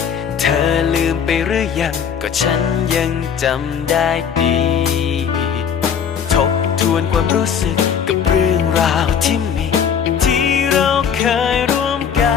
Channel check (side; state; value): right; quieter; 7.5 dB